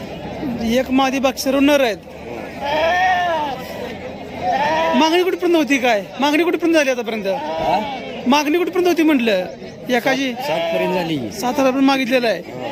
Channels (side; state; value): both; identical; correlation 1.00